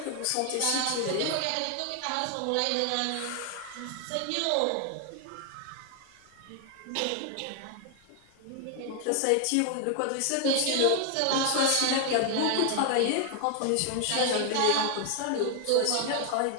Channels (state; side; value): different; both; correlation 0.00